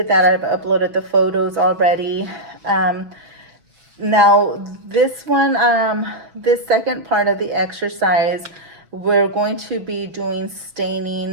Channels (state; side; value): late; left; 6.1 ms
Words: that. I've uploaded the photos already. Now this one, this second part of the exercise, we're going to be doing